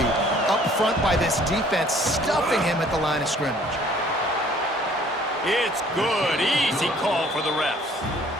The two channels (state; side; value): normal; both; correlation 0.57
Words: up front by this defense, stuffing him at the line of scrimmage? It's good. Easy call for the refs.